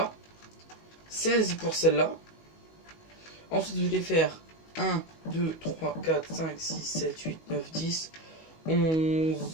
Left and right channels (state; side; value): late; right; 19 ms